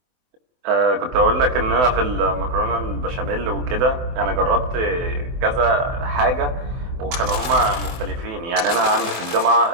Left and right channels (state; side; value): late; left; 24 ms